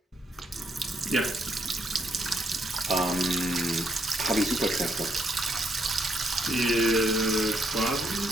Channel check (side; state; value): both; normal; correlation 0.75